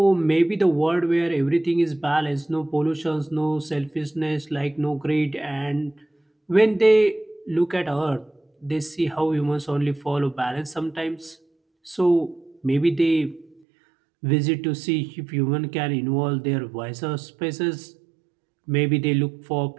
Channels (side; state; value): left; drops out; at 13.6 s